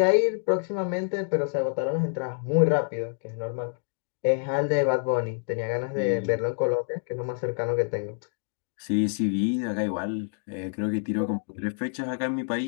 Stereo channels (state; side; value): silent; right; 59 dB below the other